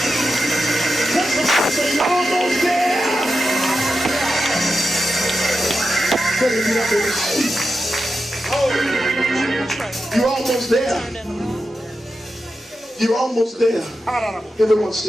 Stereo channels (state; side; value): normal; both; correlation 0.90